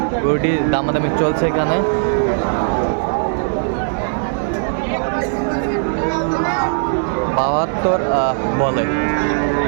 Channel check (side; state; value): left; silent; 66 dB below the other